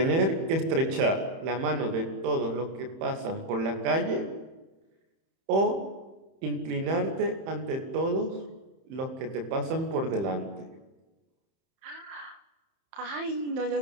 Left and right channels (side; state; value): left; late; 31 ms